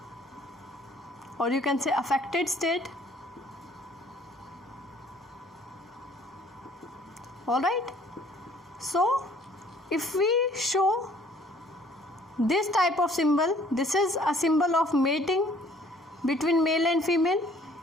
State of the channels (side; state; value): both; normal; correlation 0.58